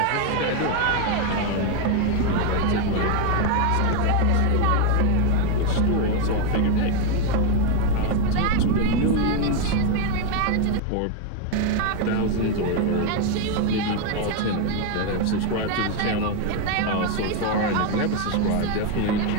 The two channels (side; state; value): both; different; correlation 0.01